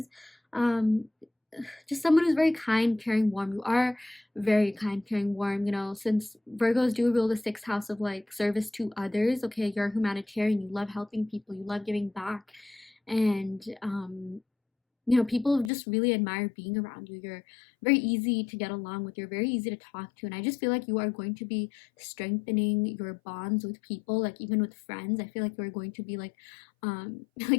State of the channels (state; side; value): drops out; right; at 15.7 s